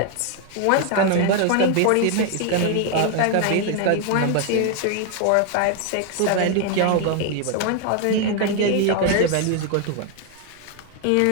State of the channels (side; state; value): both; different; correlation 0.01